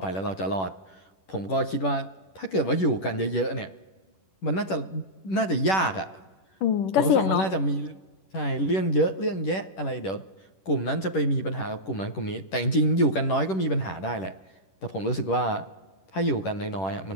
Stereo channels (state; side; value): late; right; 10 ms